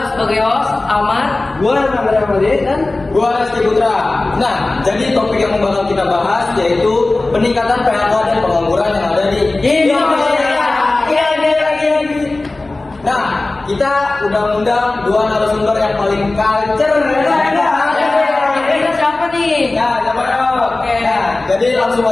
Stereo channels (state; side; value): quieter; right; 3.1 dB